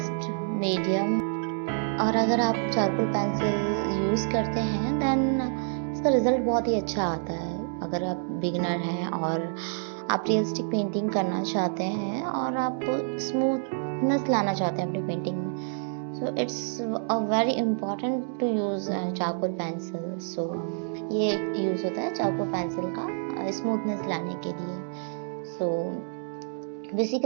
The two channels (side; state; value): left; silent; digital silence